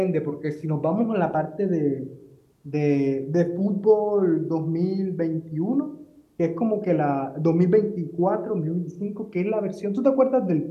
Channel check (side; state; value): both; identical; correlation 1.00